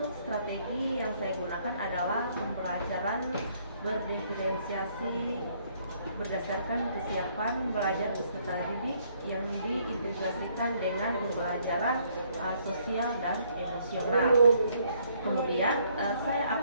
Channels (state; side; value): inverted; both; correlation -0.67